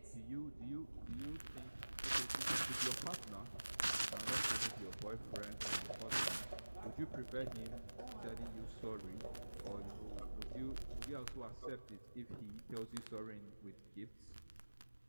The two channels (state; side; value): inverted; both; correlation -1.00